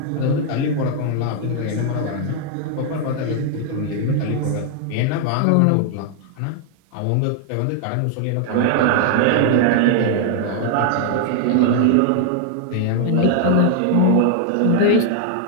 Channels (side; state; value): both; different; correlation 0.00